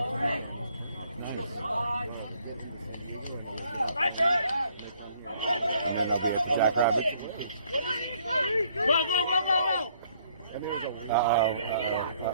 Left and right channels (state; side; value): inverted; both; correlation -0.65